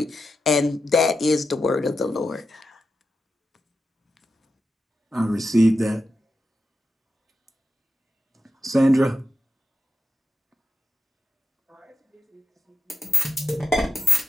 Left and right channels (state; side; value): normal; both; correlation 0.89